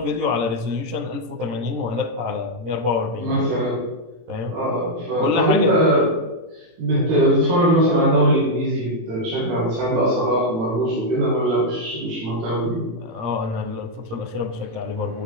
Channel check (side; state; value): left; late; 18 ms